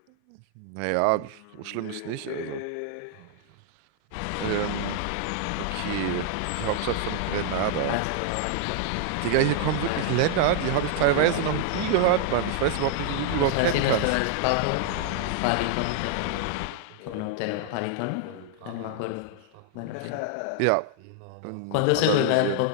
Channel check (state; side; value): different; both; correlation 0.00